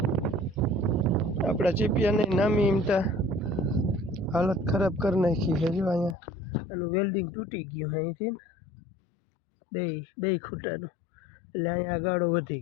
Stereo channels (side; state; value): right; drops out; at 6.2 s